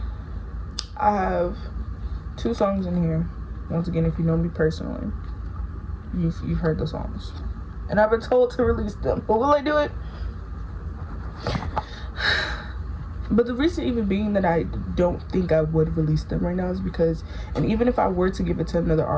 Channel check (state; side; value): identical; both; correlation 1.00